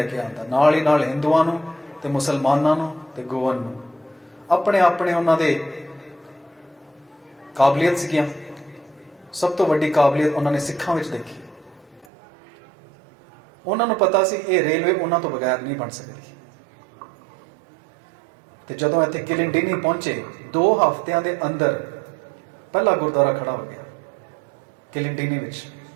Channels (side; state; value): left; drops out; at 12.1 s